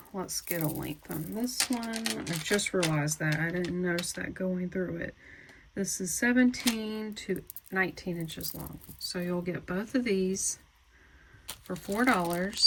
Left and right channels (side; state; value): both; identical; correlation 1.00